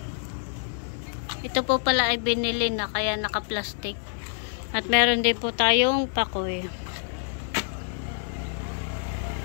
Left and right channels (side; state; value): right; silent; 60 dB below the other